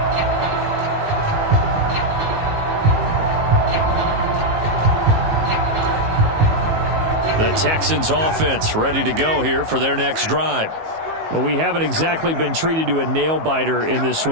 The Texans offense ready to go here for their next drive. Well, we haven't exactly been treated to a nail-biter in this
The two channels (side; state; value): left; late; 19 ms